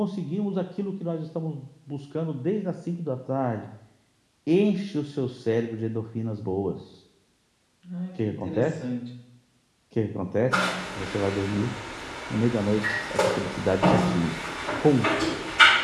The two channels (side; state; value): both; identical; correlation 1.00